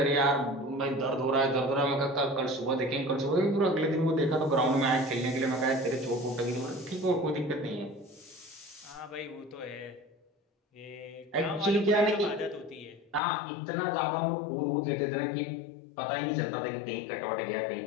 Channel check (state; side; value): drops out; right; at 13.2 s